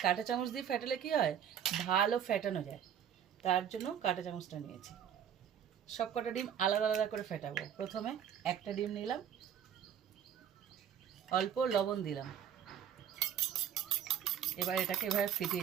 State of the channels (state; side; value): quieter; left; 9.0 dB